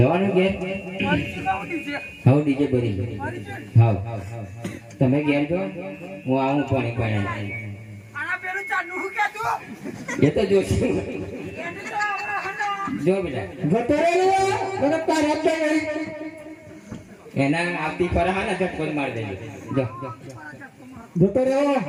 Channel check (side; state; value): both; identical; correlation 1.00